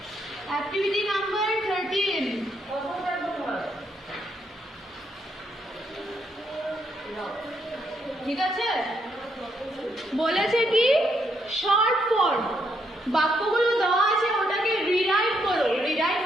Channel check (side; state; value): both; normal; correlation 0.75